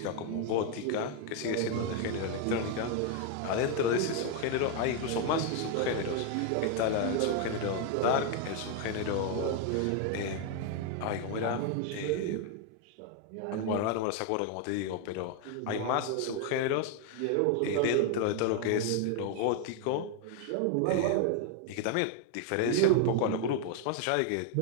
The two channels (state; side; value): different; both; correlation 0.01